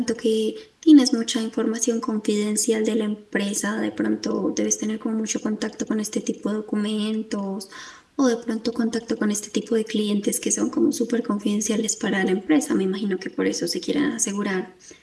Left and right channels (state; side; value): identical; both; correlation 1.00